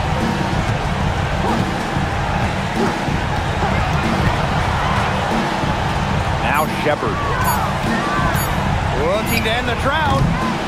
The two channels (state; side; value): identical; both; correlation 1.00